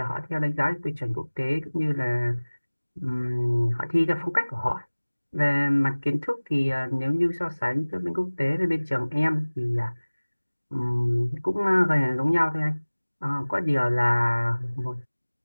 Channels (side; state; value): both; inverted; correlation -1.00